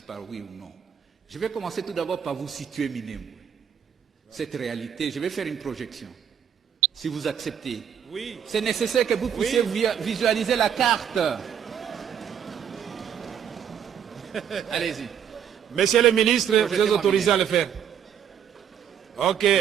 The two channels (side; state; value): left; quieter; 8.6 dB